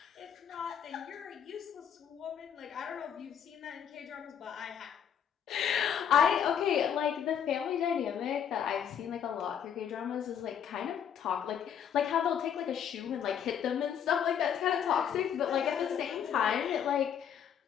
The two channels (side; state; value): right; quieter; 8.5 dB